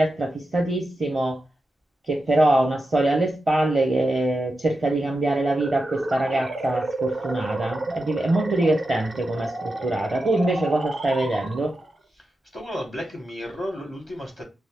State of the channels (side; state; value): both; normal; correlation 0.90